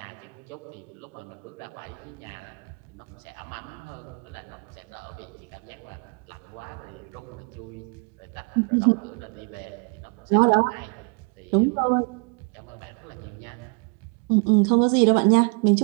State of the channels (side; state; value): left; quieter; 34.7 dB